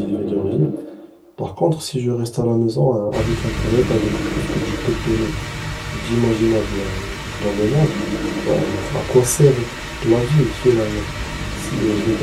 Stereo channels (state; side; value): identical; both; correlation 1.00